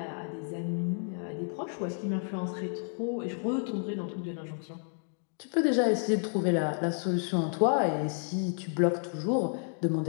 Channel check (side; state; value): right; silent; 57 dB below the other